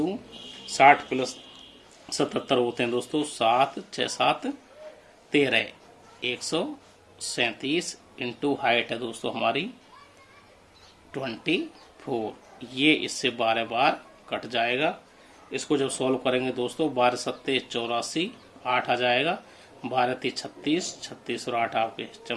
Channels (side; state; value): both; identical; correlation 1.00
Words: 60 प्लस 77 होते हैं दोस्तों 7 6 7 13, 137 इंटू हाइट है दोस्तों हमारी 24। ये इससे 12 बार कट जाएगा। इसको जब सॉल्व करेंगे दोस्तों 12 सत्ते 84, 8 आ जाएगा, 12 ती 36, 36 और 8 आपके